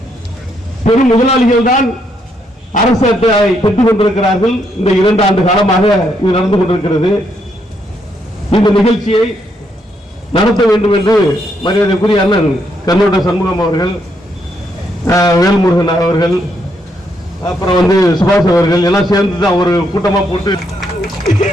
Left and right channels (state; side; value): normal; both; correlation 0.76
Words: பெரும் முதலாளிகள் தான் அரசு அட்டையை பெற்றுக் கொண்டிருக்கிறார்கள். இந்த 2 ஆண்டு காலமாக இது நடந்து கொண்டிருக்கிறது. இந்த நிகழ்ச்சியை நடத்த வேண்டும் என்று மரியாதைக்குரிய அண்ணன் கண்ணோட்ட சண்முகம் அவர்கள், வேல்முருகன் அவர்கள், அப்புறம் சுபாஷ் அவர்கள் எல்லாம் சேர்ந்து தான் ஒரு கூட்டமா போட்டு